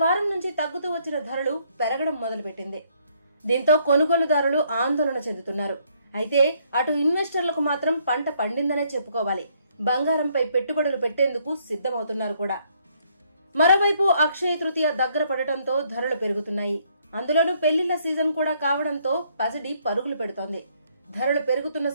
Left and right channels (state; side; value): inverted; both; correlation -0.69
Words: వారం నుంచి తగ్గుతూ వచ్చిన ధరలు పెరగడం మొదలుపెట్టింది. దీంతో కొనుగోలుదారులు ఆందోళన చెందుతున్నారు. అయితే అటు ఇన్వెస్టర్లకు మాత్రం పంట పండిందనే చెప్పుకోవాలి. బంగారంపై పెట్టుబడులు పెట్టేందుకు సిద్ధమవుతున్నారు కూడా. మరోవైపు అక్షయ తృతీయ దగ్గర పడటంతో ధరలు పెరుగుతున్నాయి. అందులోనూ పెళ్లిళ్ల సీజన్ కూడా కావడంతో పసిడి పరుగులు పెడుతోంది. ధరలు పెరుగుతున్న